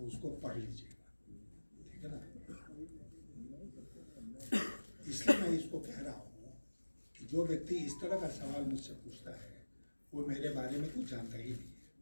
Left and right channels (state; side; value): inverted; both; correlation -1.00